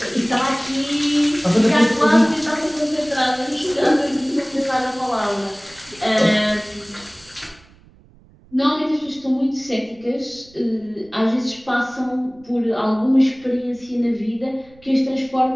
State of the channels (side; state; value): right; noise; rumble, 27 dB below the sound